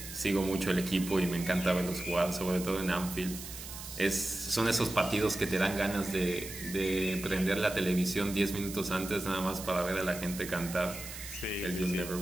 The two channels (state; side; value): noise; right; hiss, 11 dB below the sound